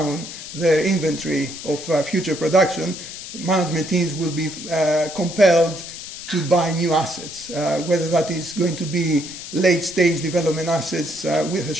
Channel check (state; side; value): noise; left; hiss, 11 dB below the sound